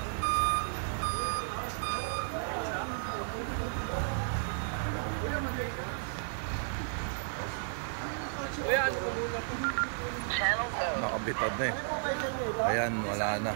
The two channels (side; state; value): left; silent; digital silence